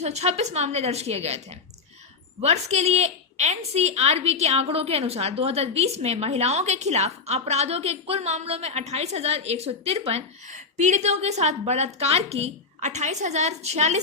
मामले दर्ज किए गए थे। वर्ष के लिए एनसीआरबी के आंकड़ों के अनुसार 2020 में महिलाओं के खिलाफ अपराधों के कुल मामलों में 28,153, पीड़ितों के साथ बलात्कार की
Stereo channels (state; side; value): quieter; right; 4.6 dB